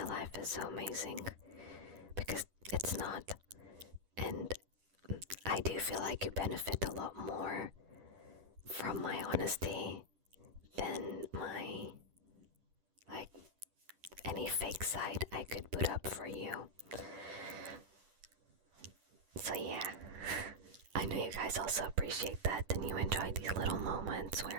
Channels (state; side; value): late; left; 10 ms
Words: life is so amazing, because it's not. And I do feel like you benefit a lot more from my honesty than my, like, any fake side I could put up for you. So yeah, I know you guys also appreciate that and you enjoy these little moments